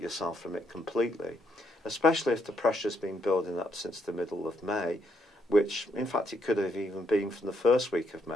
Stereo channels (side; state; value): both; normal; correlation 0.74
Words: from it completely, especially if the pressure's been building up since the middle of May, which, in fact, it could have even been from the first week of